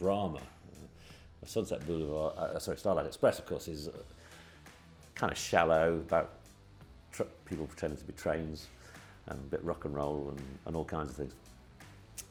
Sunset Boulevard, Starlight Express, of course, is kind of shallow, about people pretending to be trains, and a bit rock and roll and all kinds of things.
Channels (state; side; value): identical; both; correlation 1.00